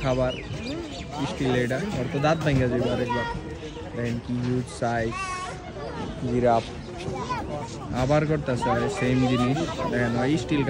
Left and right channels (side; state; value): both; identical; correlation 1.00